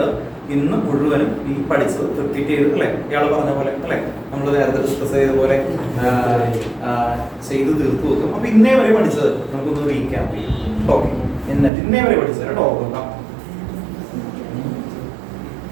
ഇന്ന് മുഴുവനും ഈ പഠിച്ചത് റിപ്പീറ്റ് ചെയ്ത് അല്ലേ, ഇയാൾ പറഞ്ഞ പോലെ അല്ലേ, നമ്മൾ നേരത്തെ ഡിസ്കസ് ചെയ്ത പോലെ ചെയ്ത് തീർത്തു വെക്കും. അപ്പൊ ഇന്നേ വരെ പഠിച്ചത് നമുക്കൊന്ന് റീക്യാപ്പ് ചെയ്യും. ഓക്കെ, എന്നിട്ട് ഇന്നേ വരെ പഠിച്ചത് കേട്ടോ നോക്കാം.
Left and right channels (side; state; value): left; drops out; at 11.7 s